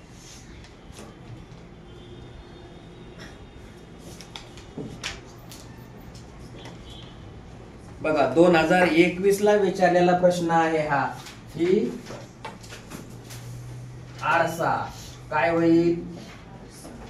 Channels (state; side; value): identical; both; correlation 1.00